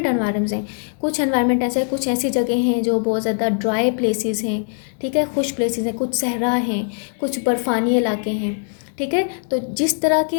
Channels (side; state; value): right; silent; 59 dB below the other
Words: एनवायरनमेंट्स हैं। कुछ एनवायरनमेंट ऐसे हैं, कुछ ऐसी जगह हैं जो बहुत ज़्यादा ड्राई प्लेसेस हैं, ठीक है, खुश प्लेसेस हैं, कुछ सहरा हैं, कुछ बर्फानी इलाके हैं, ठीक है। तो जिस तरह के